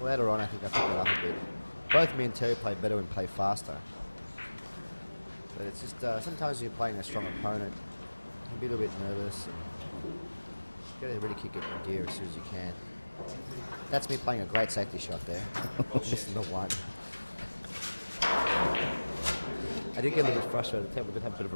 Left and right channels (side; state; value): both; inverted; correlation -1.00